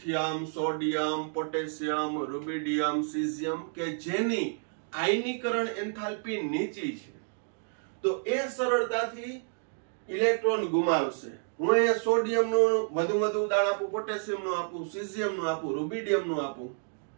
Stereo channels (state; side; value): silent; left; 58 dB below the other